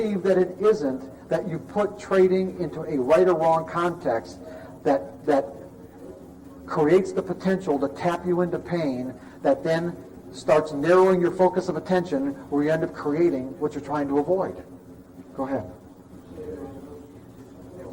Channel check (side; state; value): both; identical; correlation 1.00